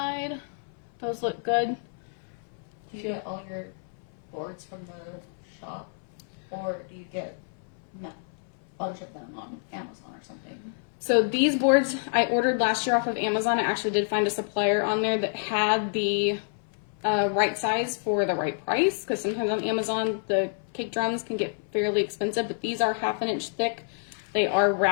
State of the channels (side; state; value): right; silent; 59 dB below the other